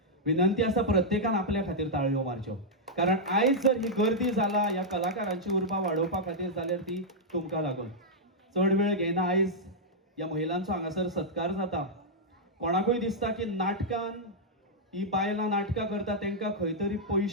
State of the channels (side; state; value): both; normal; correlation -0.06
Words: विनंती आसा प्रत्येकान आपल्या खातीर ताळयो मारच्यो, कारण आयज जर ही गर्दी जाला ह्या कलाकारांची उर्बा वाडोवपा खातीर जाल्यार ती तुमकां लागून. चड वेळ घेयना, आयज ह्या महिलांचो हांगासर सत्कार जाता. कोणाकूय दिसता की नाटकान ही बायलां नाटकां करता तांकां खंय तरी